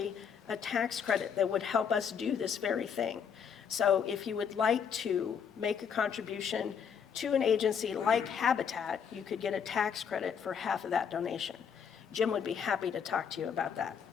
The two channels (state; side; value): quieter; right; 7.2 dB